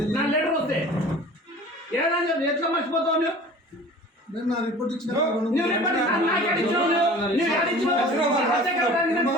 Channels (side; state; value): both; normal; correlation 0.43